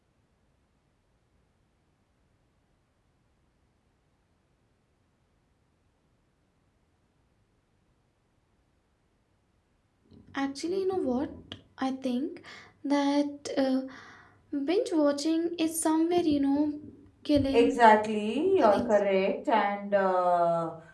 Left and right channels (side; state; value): both; identical; correlation 1.00